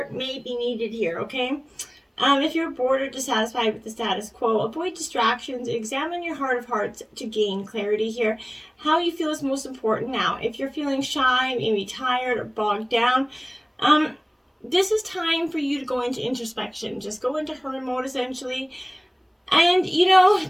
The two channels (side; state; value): both; identical; correlation 1.00